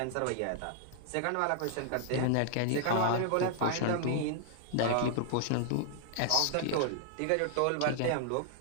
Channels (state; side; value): different; both; correlation 0.00